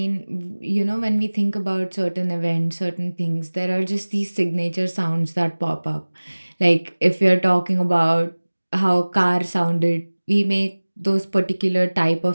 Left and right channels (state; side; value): inverted; both; correlation -1.00